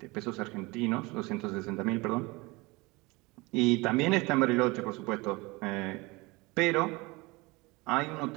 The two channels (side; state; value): left; quieter; 24.0 dB